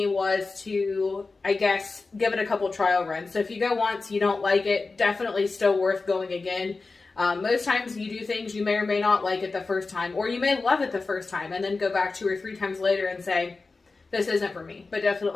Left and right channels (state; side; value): quieter; right; 3.9 dB